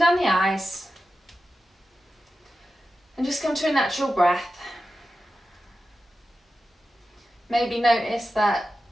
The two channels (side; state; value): both; normal; correlation 0.92